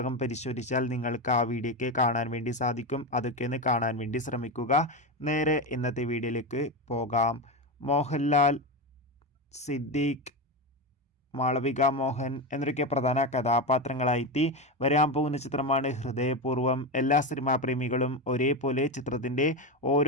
പരിശോധിച്ചാൽ നിങ്ങൾക്ക് ആ വീഡിയോയ്ക്ക് കാണാൻ വേണ്ടി സാധിക്കും. അതൊക്കെ ഒന്ന് കാണാൻ വേണ്ടി ശ്രമിക്കുക. നേരെ ഇന്നത്തെ വീഡിയോയിലേക്ക് പോകാം. മോഹൻലാൽ, സിദ്ദീഖ്, മാളവിക മോഹൻ എന്നൊക്കെ പ്രധാന കഥാപാത്രങ്ങളായി വരാൻ പോകുന്ന ചിത്രമാണ് ഹൃദയപൂർവ്വം. എല്ലാ സിനിമാ പ്രേമികളും ഒരേപോലെ ചിത്രത്തിൻ്റെ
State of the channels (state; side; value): normal; both; correlation 0.15